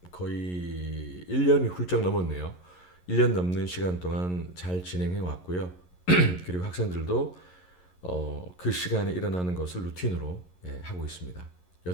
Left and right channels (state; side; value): late; right; 11 ms